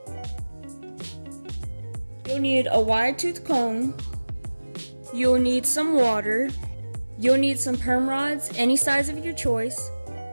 You'll need a wide tooth comb. You'll need some water. You'll need some perm rods, any size of your choice.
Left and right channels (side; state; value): both; inverted; correlation -1.00